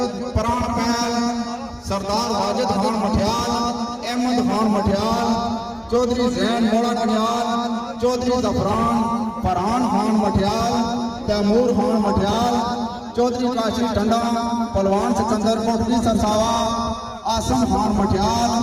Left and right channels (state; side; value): identical; both; correlation 1.00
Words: प्राण पैल, सरदार वाजिद खान मठियाल, अहमद खान मठियाल, चौधरी जैन मोड़ा कन्याल, चौधरी जफरान फरहान खान मठियाल, तैमूर खान मठियाल, चौधरी काशी टंडा, पलवान सिकंदर कोटली सरसावा, आसम खान मठियाल,